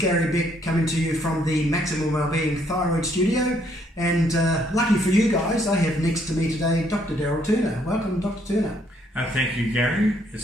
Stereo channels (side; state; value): both; normal; correlation 0.69